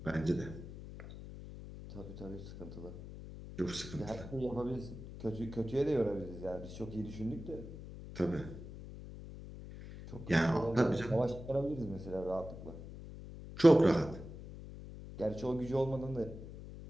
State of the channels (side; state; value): left; noise; hum, 12 dB below the sound